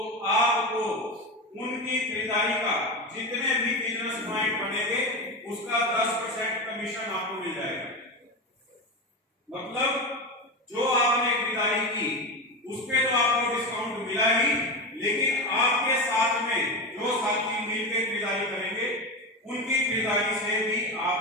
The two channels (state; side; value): normal; both; correlation 0.19